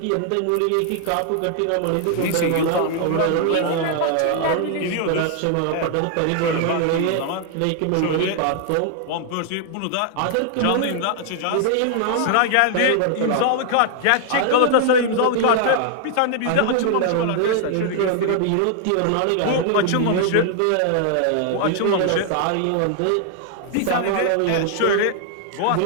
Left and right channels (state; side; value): different; both; correlation 0.00